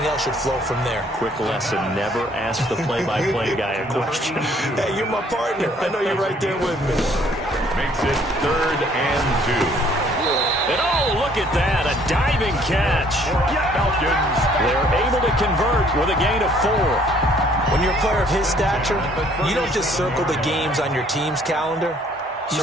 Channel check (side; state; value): both; normal; correlation 0.61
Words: else should flow from there. Quick lesson, never ask the play-by-play guy a question. Hey, you're my partner. I know you're right there with me. Makes it 3rd and 2. And oh, look at that, a diving catch. Falcons. They're able to convert with a gain of 4. When you're a player of his stature, you don't just circle the games on your team's calendar.